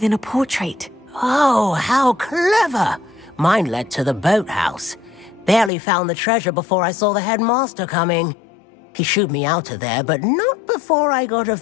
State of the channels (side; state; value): right; drops out; at 5.7 s